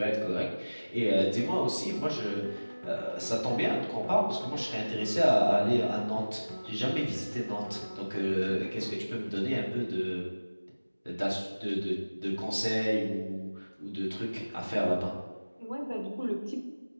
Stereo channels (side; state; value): both; inverted; correlation -1.00